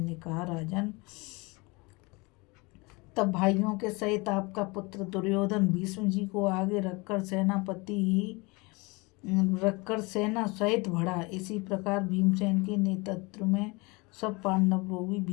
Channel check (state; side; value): quieter; right; 26.3 dB